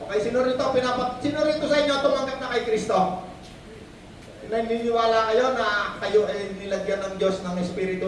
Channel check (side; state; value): both; identical; correlation 1.00